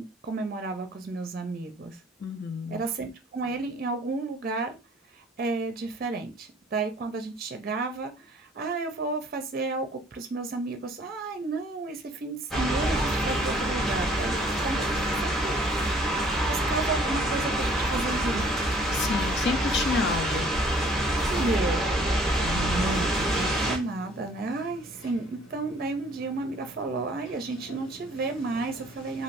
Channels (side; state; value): both; normal; correlation 0.56